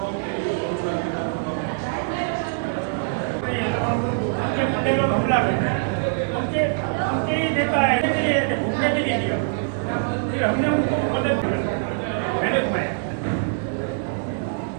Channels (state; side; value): silent; left; 63 dB below the other